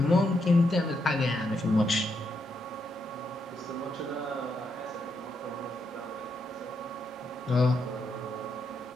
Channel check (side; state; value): both; normal; correlation 0.80